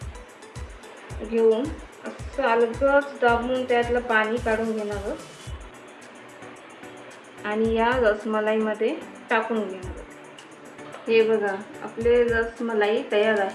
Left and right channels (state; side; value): identical; both; correlation 1.00